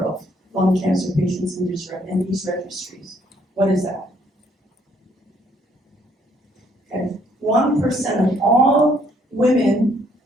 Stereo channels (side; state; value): both; normal; correlation 0.67